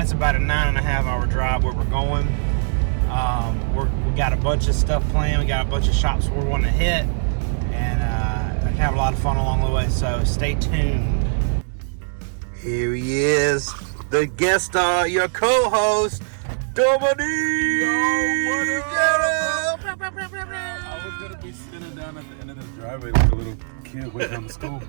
It's about a 9.5-hour drive where we're going. We got a bunch of stuff planned. We got a bunch of shops we're wanting to hit, and I can have a lot of fun along the way. So stay tuned. Here he is, the guest star, your co-host, Dominique. Yo, what up? I was gonna be sitting down at the end of the driveway like a little kid waiting on the school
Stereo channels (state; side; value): silent; left; digital silence